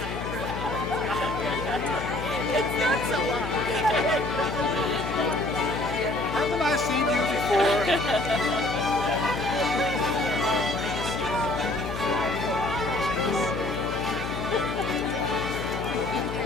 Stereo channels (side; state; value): left; noise; hum, 6 dB below the sound